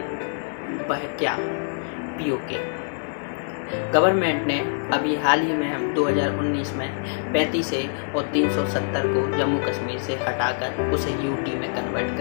वह क्या? पीओके। गवर्नमेंट ने अभी हाल ही में हम 2019 में 35 ए और 370 को जम्मू कश्मीर से हटाकर उसे यूटी में कन्वर्ट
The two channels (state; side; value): silent; right; digital silence